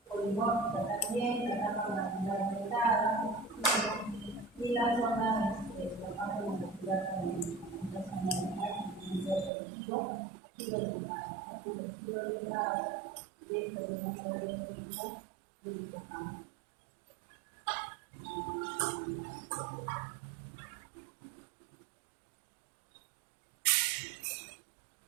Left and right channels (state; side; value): drops out; left; at 9.5 s